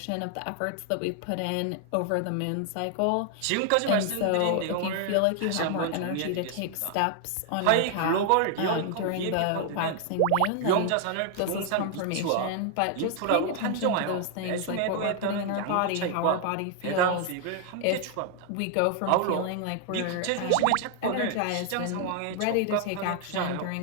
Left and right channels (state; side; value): different; both; correlation 0.00